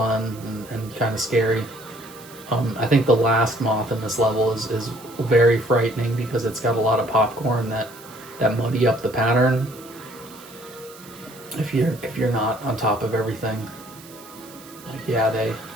and kind of scary. I think the last moth in this level is very frightening because it's got a lot of popcorn that muddy up the pattern. If you're not on top of everything, like,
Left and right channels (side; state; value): right; noise; hiss, 20 dB below the sound